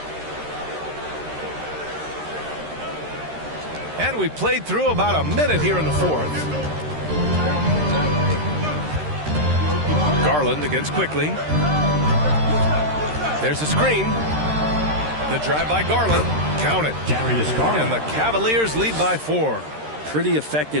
And we played through about a minute here in the fourth. Garland against quickly. There's a screen. The drive by Garland. Count it. Darius Garland. And the Cavaliers lead by 4. Pretty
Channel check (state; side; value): late; left; 13 ms